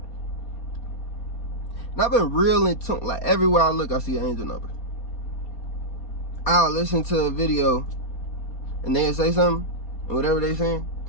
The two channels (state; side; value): late; right; 4.3 ms